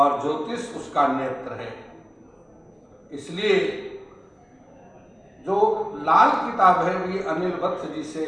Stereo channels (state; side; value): identical; both; correlation 1.00